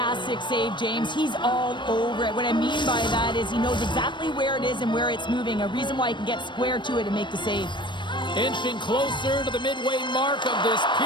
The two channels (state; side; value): late; right; 0.22 ms